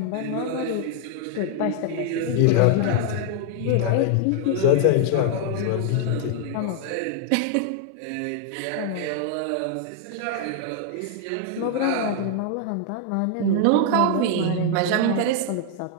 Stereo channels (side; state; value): both; different; correlation 0.00